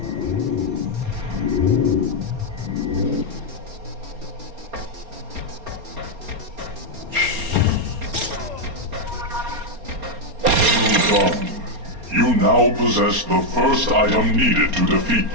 You now possess the first item needed to defeat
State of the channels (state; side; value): late; left; 4.3 ms